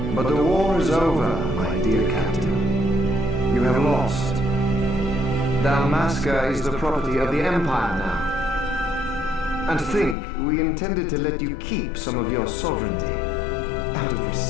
But the war is over, my dear captain. You have lost. Dalmasca is the property of the Empire now. And think, we intended to let you keep some of your sovereignty, out of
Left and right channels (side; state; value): right; drops out; at 10.2 s